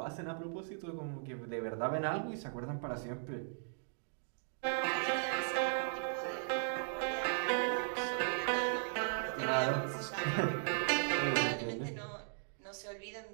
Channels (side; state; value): left; silent; digital silence